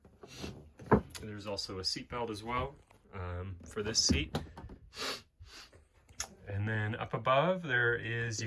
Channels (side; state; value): both; identical; correlation 1.00